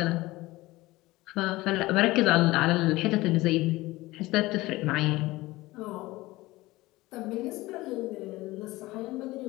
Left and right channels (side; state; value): right; quieter; 19.3 dB